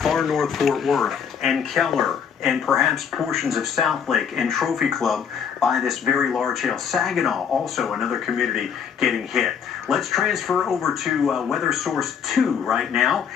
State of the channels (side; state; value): right; quieter; 7.3 dB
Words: north Fort Worth and Keller and perhaps portions of Southlake and Trophy Club by this very large hail. Saginaw, also another community getting hit. Let's transfer over to Weather Source 2 right now,